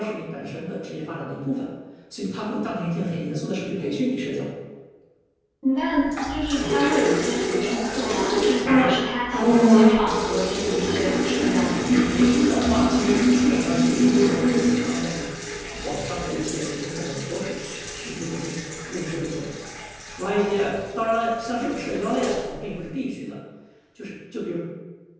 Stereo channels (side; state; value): both; identical; correlation 1.00